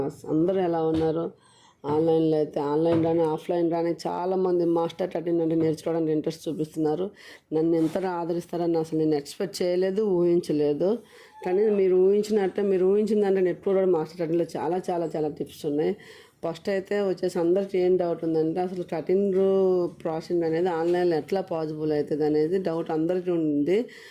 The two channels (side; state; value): both; identical; correlation 1.00